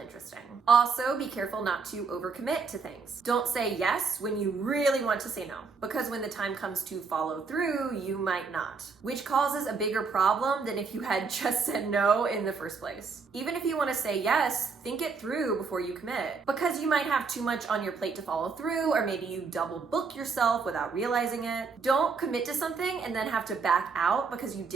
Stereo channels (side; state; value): left; quieter; 5.0 dB